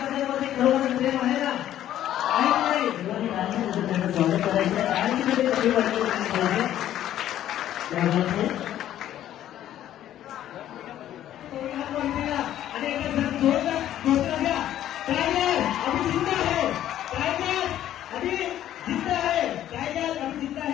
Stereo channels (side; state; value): right; quieter; 12.0 dB